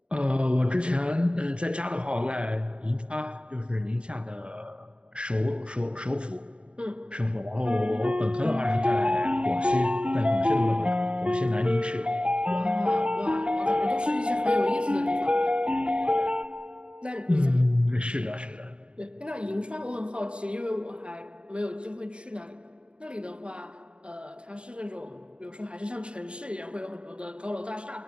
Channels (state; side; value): late; left; 0.055 ms